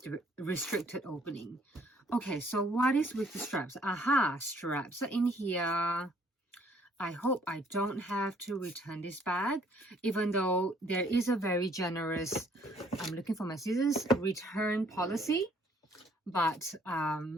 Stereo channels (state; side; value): normal; both; correlation 0.62